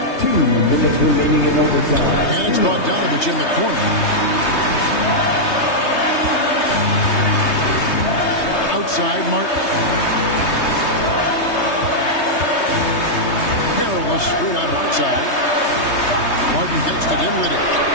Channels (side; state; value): right; late; 3.2 ms